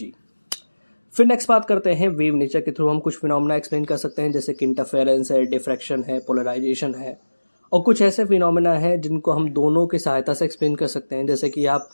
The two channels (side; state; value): both; inverted; correlation -1.00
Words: फिर नेक्स्ट बात करते हैं वेव नेचर के थ्रू हम कुछ फिनोमेना एक्सप्लेन कर सकते हैं, जैसे कि इंटरफेरेंस है, डिफ्रैक्शन है, पोलराइजेशन है, और कुछ ऐसे फिनोमेना है जिनको हम दोनों की सहायता से एक्सप्लेन कर सकते हैं, जैसे कि आप